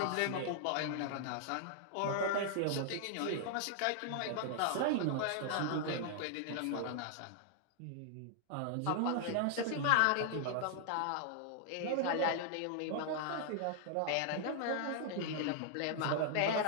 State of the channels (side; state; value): both; different; correlation -0.01